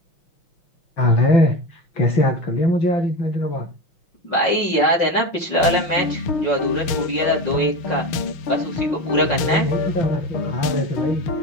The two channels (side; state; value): right; late; 6.4 ms